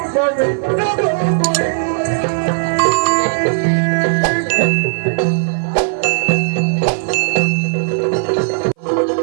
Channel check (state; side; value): silent; left; 58 dB below the other